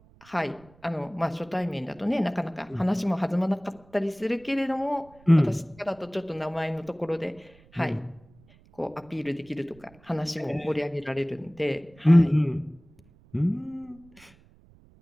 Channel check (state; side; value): noise; right; rumble, 27 dB below the sound